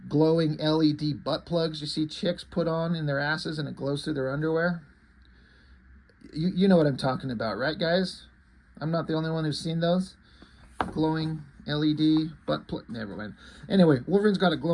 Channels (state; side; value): identical; both; correlation 1.00